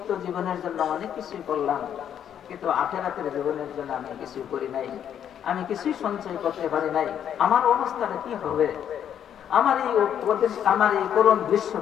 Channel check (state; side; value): quieter; right; 9.4 dB